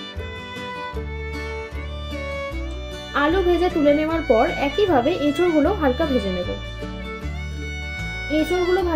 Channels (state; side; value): identical; both; correlation 1.00